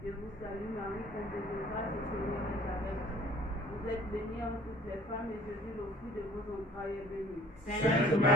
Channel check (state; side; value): normal; both; correlation 0.53